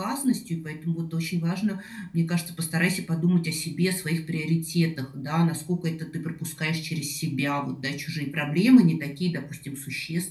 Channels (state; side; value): identical; both; correlation 1.00